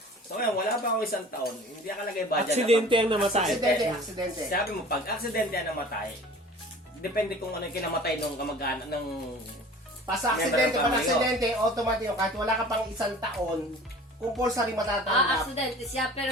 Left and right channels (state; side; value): normal; both; correlation 0.44